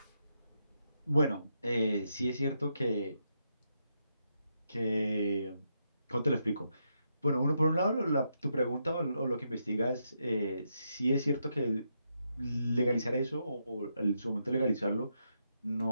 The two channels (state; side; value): inverted; both; correlation -0.81